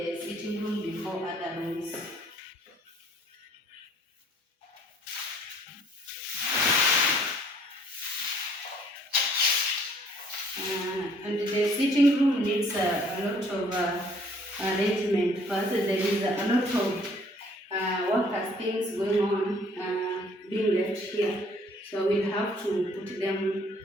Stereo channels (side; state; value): both; normal; correlation 0.59